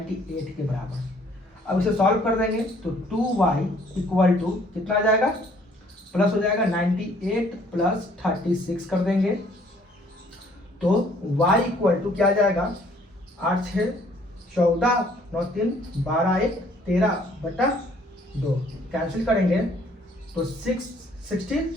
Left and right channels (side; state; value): both; normal; correlation 0.61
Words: के बराबर। अब इसे सॉल्व कर देंगे तो 2y इक्वल टू कितना आ जाएगा प्लस हो जाएगा 98 प्लस 36 कर देंगे, तो y इक्वल टू क्या आ जाएगा 8 6 14 9 3 12 1 13 बटा 2, कैंसिल करेंगे तो